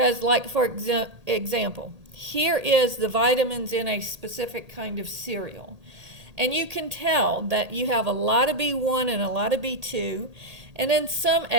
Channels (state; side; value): late; left; 1.8 ms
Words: like, for example, here is the vitamins in a specific kind of cereal. And you can tell that you have a lot of B1 and a lot of B2, and then some